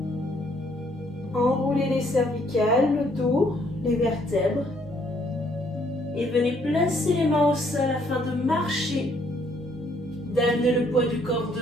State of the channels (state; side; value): normal; both; correlation 0.67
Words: Enroulez les cervicales, le dos, les vertèbres. Et venez placer les mains au sol afin de marcher. D'amener le poids du corps